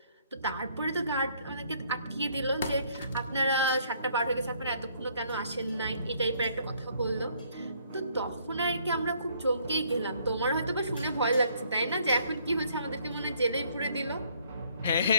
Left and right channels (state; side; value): inverted; both; correlation -0.65